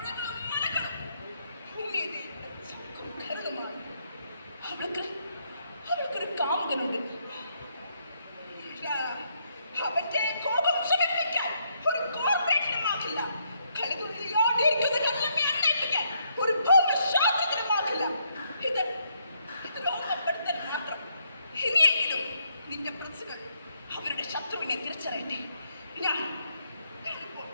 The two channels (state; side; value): inverted; both; correlation -0.74